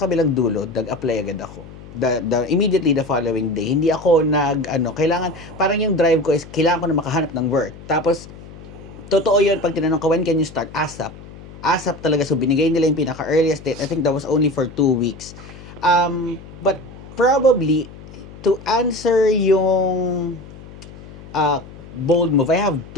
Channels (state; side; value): noise; left; hum, 17 dB below the sound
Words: kabilang dulo, nag-apply agad ako. Immediately the following day, hindi ako kailangan, parang yung drive ko is, kailangan ko na makahanap ng work. Tapos, totoo yun, pag tinanong ka, when can you start? ASAP. ASAP talaga. So, binigay nila yung pinaka-earliest date. I think that was only for 2 weeks. But probably, to answer yung bold move, I have